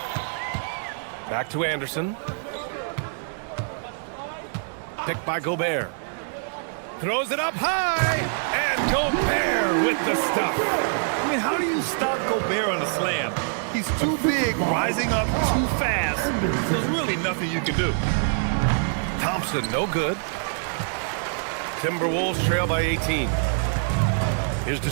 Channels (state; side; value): silent; left; 60 dB below the other